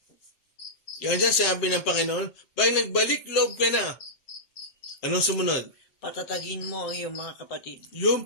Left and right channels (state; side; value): late; right; 7.6 ms